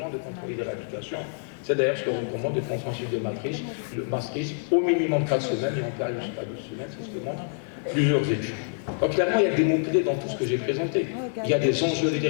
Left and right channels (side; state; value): right; silent; digital silence